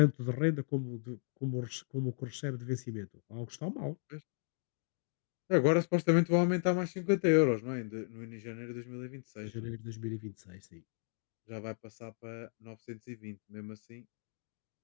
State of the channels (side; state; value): right; silent; digital silence